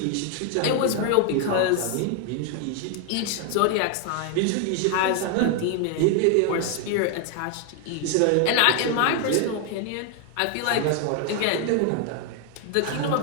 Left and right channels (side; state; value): both; different; correlation 0.00